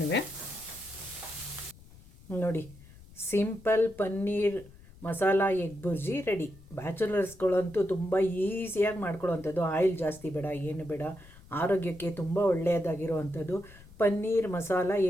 ನೋಡಿ, simple paneer masala egg bhurji ready. ಬ್ಯಾಚುಲರ್ಸ್ಗಳಂತೂ ತುಂಬ ಈಸಿಯಾಗಿ ಮಾಡ್ಕೊಳ್ಳೋವಂಥದ್ದು. ಆಯಿಲ್ ಜಾಸ್ತಿ ಬೇಡ, ಏನು ಬೇಡ. ಆರೋಗ್ಯಕ್ಕೆ ತುಂಬ ಒಳ್ಳೆಯದಾಗಿರುವಂಥದ್ದು ಪನ್ನೀರ್ ಮಸಾಲ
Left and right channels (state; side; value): noise; left; rumble, 21 dB below the sound